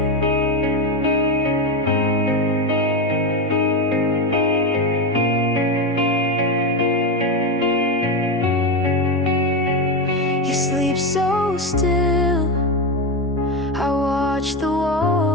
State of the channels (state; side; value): normal; both; correlation 0.14